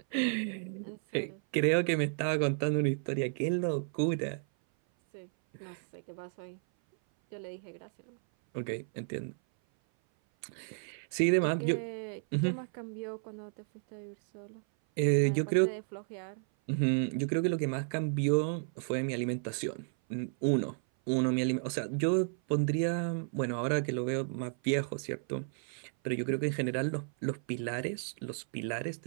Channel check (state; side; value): silent; left; 56 dB below the other